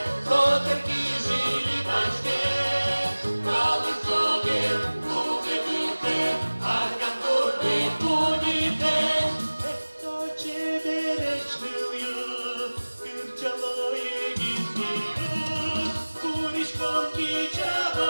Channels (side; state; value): both; inverted; correlation -1.00